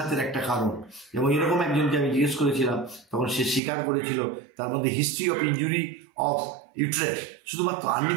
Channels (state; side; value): drops out; left; at 3.6 s